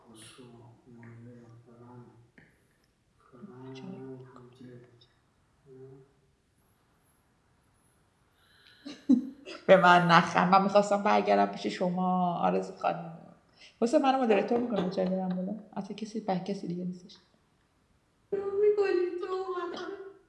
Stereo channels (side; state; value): both; identical; correlation 1.00